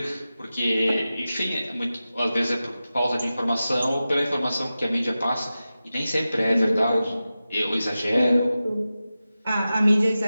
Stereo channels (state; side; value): inverted; both; correlation -0.94